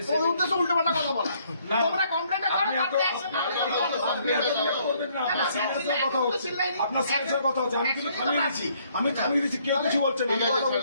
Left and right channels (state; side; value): inverted; both; correlation -0.67